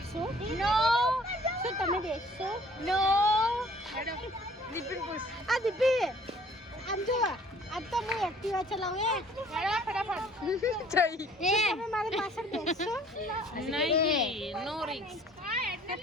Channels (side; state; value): both; normal; correlation 0.55